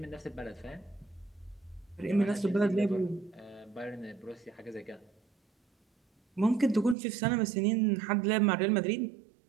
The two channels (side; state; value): left; drops out; at 7.0 s